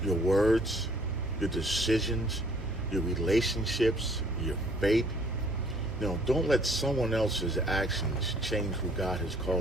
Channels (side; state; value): both; normal; correlation 0.59